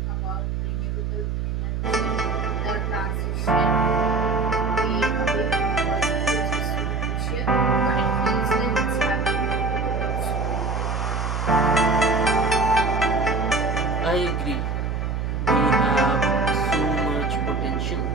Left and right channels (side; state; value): right; noise; hum, 1 dB below the sound